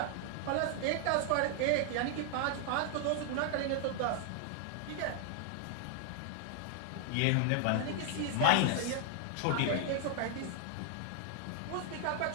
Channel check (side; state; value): both; different; correlation 0.00